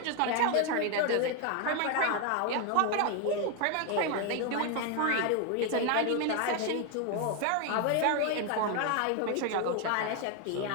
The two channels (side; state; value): both; different; correlation 0.01